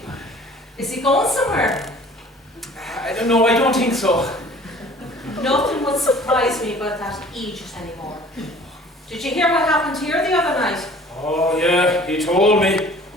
Is he going somewhere? I don't know, I don't think so. Nothing would surprise me about that Egypt anymore. Did you hear what happened here the other night? Oh yeah, he told me.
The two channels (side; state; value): both; normal; correlation 0.49